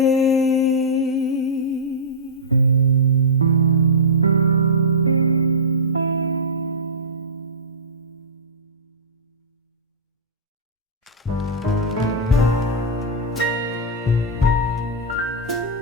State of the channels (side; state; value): both; normal; correlation -0.14